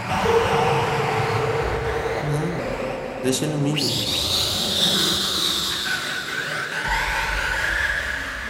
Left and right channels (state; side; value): identical; both; correlation 1.00